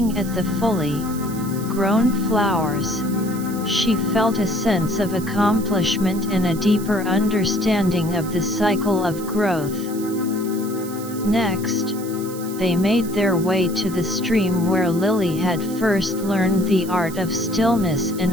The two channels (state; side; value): noise; right; hiss, 15 dB below the sound